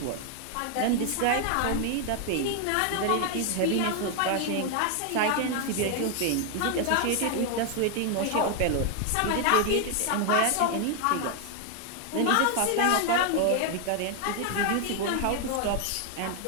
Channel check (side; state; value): both; different; correlation 0.00